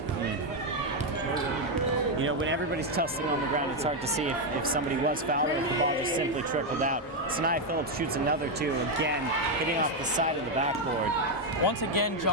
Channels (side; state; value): both; normal; correlation 0.04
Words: You know, when everybody's tussling on the ground, it's hard to see if somebody was fouled or if the ball just simply trickled out. Sanaya Phillips shoots another 2, again, hitting off the side of the backboard. Once again,